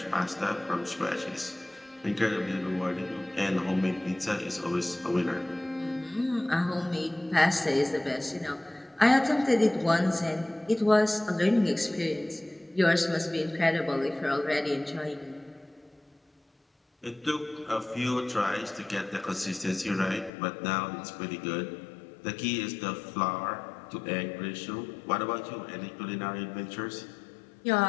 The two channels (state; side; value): drops out; right; at 20.3 s